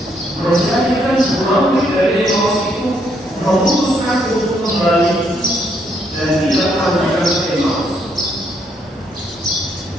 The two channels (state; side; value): normal; both; correlation 0.73